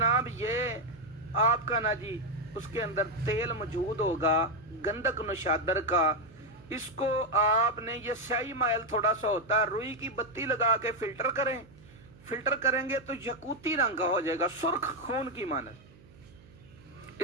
یہ آپ کا نا جی اس کے اندر تیل موجود ہوگا گندک نشادر کا. اس کو آپ نے, یہ سیاہی مائل تھوڑا سا ہوتا ہے, روئی کی بتی لگا کے فلٹر کریں. فلٹر کریں گے تو یقوتی رنگ کا ہو جائے گا, سرخ خون کی مانند.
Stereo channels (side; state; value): right; noise; hum, 24 dB below the sound